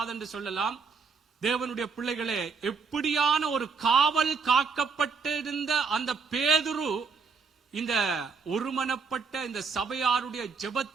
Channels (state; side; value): quieter; left; 5.2 dB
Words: என்று சொல்லலாம். தேவனுடைய பிள்ளைகளே, எப்படியான ஒரு காவல் காக்கப்பட்டிருந்த அந்த பேதுரு இந்த ஒருமனப்பட்ட இந்த சபையாருடைய